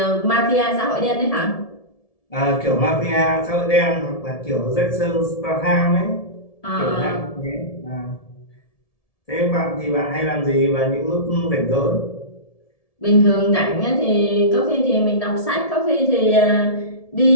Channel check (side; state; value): right; late; 1.7 ms